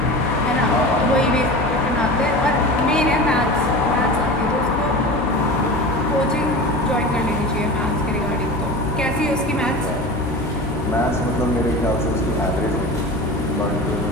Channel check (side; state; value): both; normal; correlation 0.32